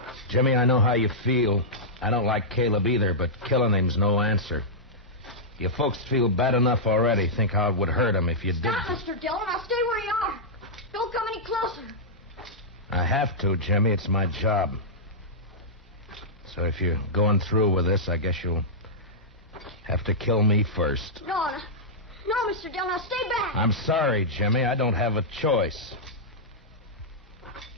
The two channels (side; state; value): both; normal; correlation -0.11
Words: Jimmy, I know how you feel. I don't like Caleb either, but killing him's no answer. You folks feel bad enough already. Think how it would hurt him if you did. Stop, Mr. Dillon. I'll stay where you are. Don't come any closer. I have to, Jimmy. It's my job. So if you're going through with this, I guess you'll have to kill me first. No, Mr. Dillon. Now stay back. I'm sorry, Jimmy. I don't have a choice.